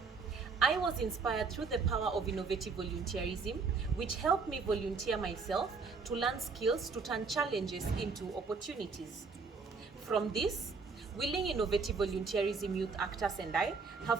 I was inspired through the power of innovative volunteerism, which helped me volunteer myself to learn skills to turn challenges into opportunities. From this, willing innovative volunteerism youth actors and I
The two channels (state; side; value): quieter; left; 4.7 dB